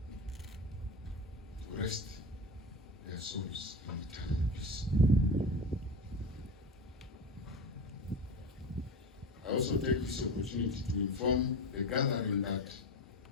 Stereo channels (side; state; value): both; normal; correlation 0.26